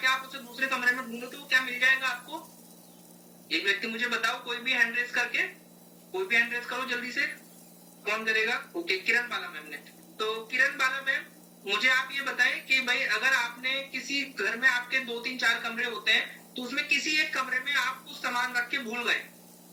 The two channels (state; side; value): identical; both; correlation 1.00